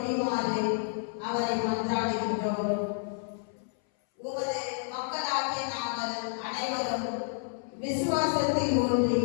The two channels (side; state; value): right; silent; 58 dB below the other